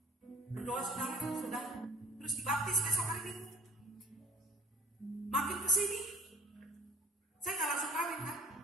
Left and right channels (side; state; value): both; normal; correlation 0.50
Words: Berdoa saudara, sudah. Terus dibaptis besok hari Minggu. Makin kesini, saya nggak langsung kawin kan.